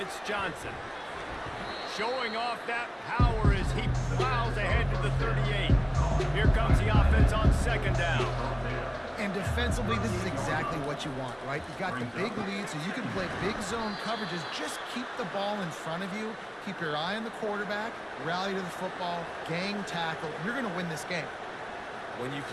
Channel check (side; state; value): both; identical; correlation 1.00